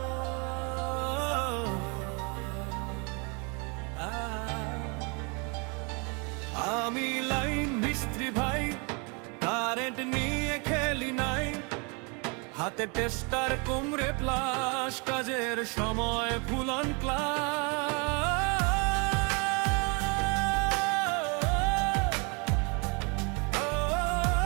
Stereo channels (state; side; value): quieter; left; 32.9 dB